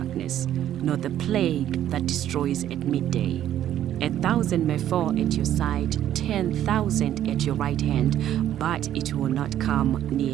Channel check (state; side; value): quieter; left; 11.5 dB